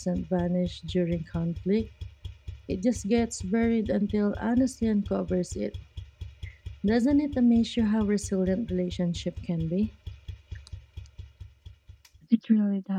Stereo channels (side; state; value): both; identical; correlation 1.00